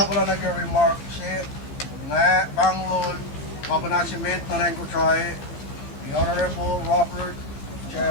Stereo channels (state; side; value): late; right; 14 ms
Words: ako lang nag-remark siya nga Banglol Kapanasimet na rin ko try the Honorable Robert J.